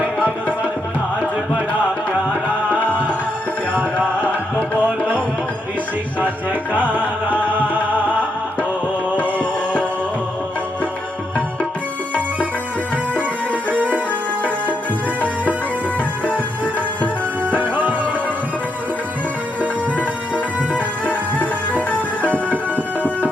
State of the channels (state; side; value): normal; both; correlation 0.79